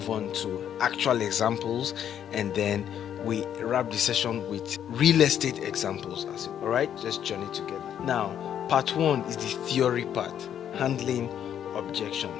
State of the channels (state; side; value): quieter; right; 9.6 dB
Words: on to actual examples, and then we wrap the session with real estate examples. All right, let's journey together. Now, part 1 is the theory part, handling